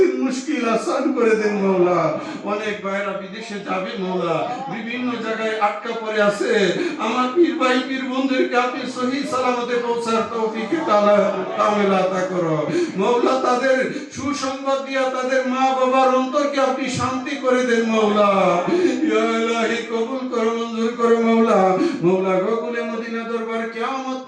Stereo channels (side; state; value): both; identical; correlation 1.00